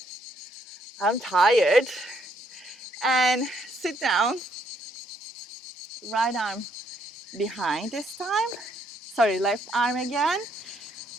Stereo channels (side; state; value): both; normal; correlation 0.71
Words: I'm tired. And sit down. Right arm behind this time. Sorry, left arm again.